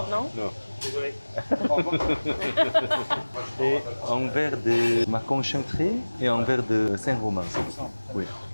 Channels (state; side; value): inverted; both; correlation -1.00